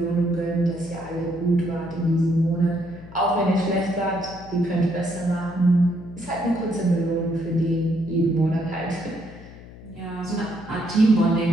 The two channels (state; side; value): noise; left; hum, 17 dB below the sound